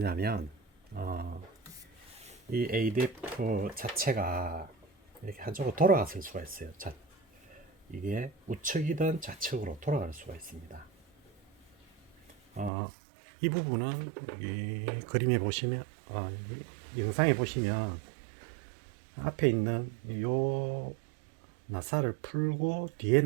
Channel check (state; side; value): drops out; left; at 12.7 s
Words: 이 ADF 자체가 이렇게 한쪽으로 돌아갔을 수가 있어요. 이게 우측이든 좌측으로 돌아갈 수가 있습니다. 이 부분은 이 그림에 보시면 영상에 보시면 앞에 있는 요 나사를 풀고 뒤에